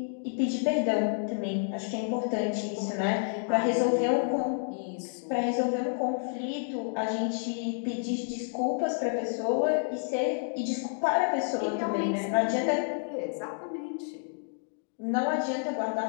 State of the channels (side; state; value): right; silent; digital silence